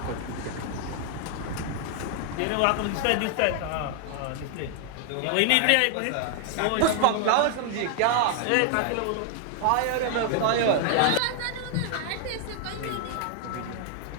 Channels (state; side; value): different; both; correlation 0.00